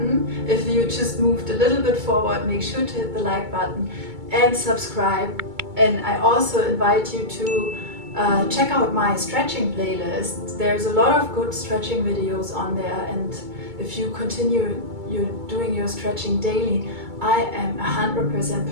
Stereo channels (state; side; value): late; left; 2.2 ms